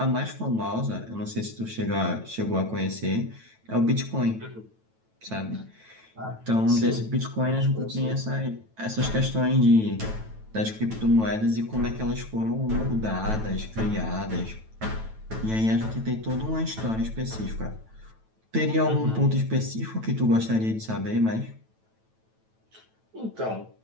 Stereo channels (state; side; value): late; left; 9.1 ms